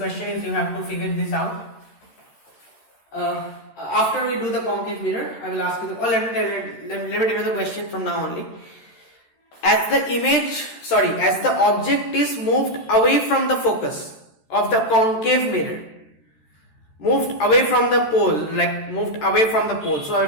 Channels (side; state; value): right; late; 13 ms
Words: is, you have to figure this out. After we do the concave mirror, I will ask you let me tell you the question from now only. As the object is moved away from the focus of the concave mirror, moved away from the pole, so away